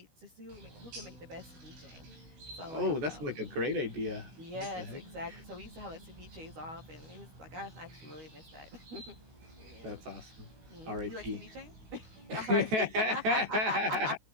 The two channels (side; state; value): left; late; 16 ms